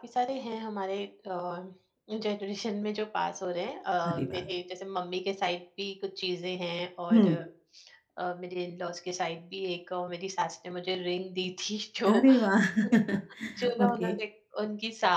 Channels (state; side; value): identical; both; correlation 1.00